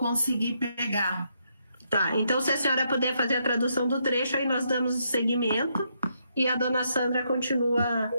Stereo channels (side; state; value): both; inverted; correlation -0.77